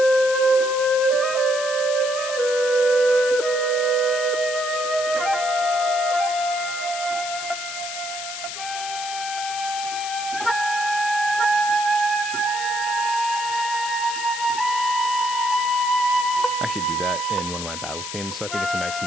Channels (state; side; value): noise; left; hiss, 7 dB below the sound